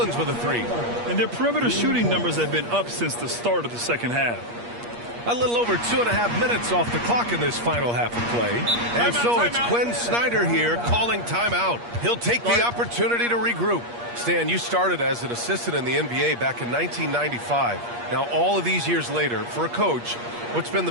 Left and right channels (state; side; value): late; left; 8.5 ms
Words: with a 3. And their perimeter shooting numbers have been up since the start of the second half. A little over 2.5 minutes off the clock in this final half of play. And so it's Quinn Snyder here calling timeout. He'll take the opportunity to regroup. Stan, you started as an assistant in the NBA back in 1995. Now, all of these years later, for a coach, what's been the